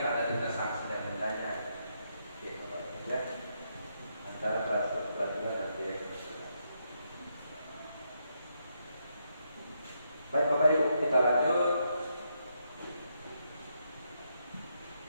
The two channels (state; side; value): inverted; both; correlation -0.79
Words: ada denda sanksi dan dendanya. Oke, ya. Antara kelas pelajaran dan direktur. Baik Bapak Ibu, kita lanjut.